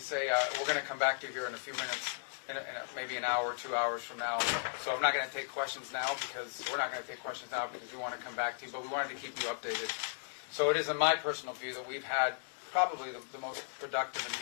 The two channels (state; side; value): silent; right; digital silence